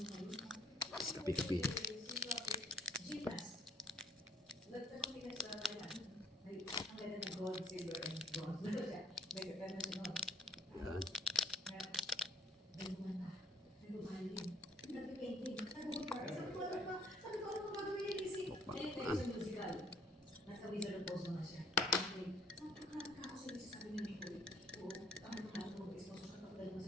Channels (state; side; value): normal; both; correlation 0.61